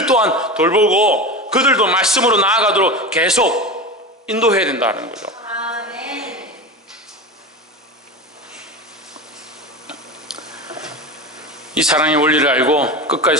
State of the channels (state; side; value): normal; both; correlation 0.26